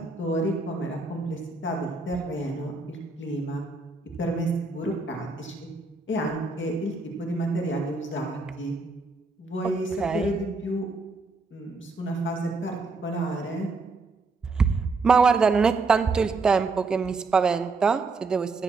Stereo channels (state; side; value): quieter; left; 3.8 dB